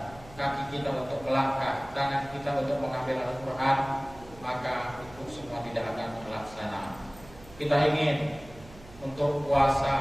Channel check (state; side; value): noise; right; hum, 20 dB below the sound